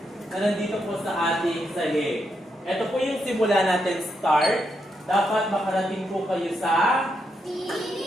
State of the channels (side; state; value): both; normal; correlation 0.81